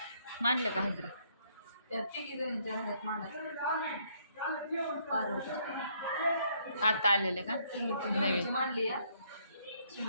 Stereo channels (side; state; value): both; inverted; correlation -0.68